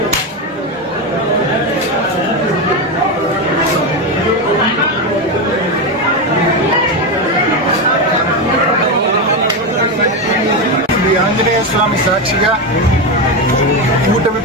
శ్రీ ఆంజనేయ స్వామి సాక్షిగా కూటమి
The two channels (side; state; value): both; normal; correlation 0.12